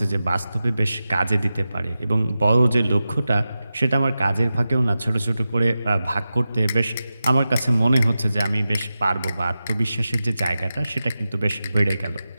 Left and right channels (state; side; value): inverted; both; correlation -0.93